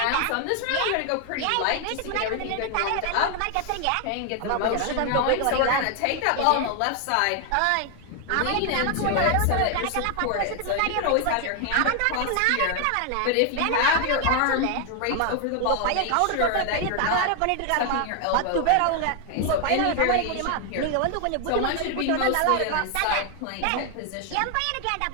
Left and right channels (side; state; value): both; different; correlation 0.00